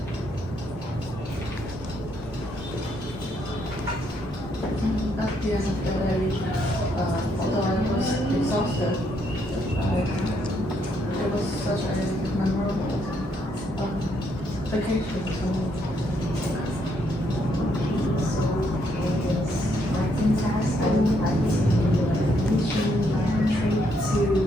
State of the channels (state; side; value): normal; both; correlation 0.73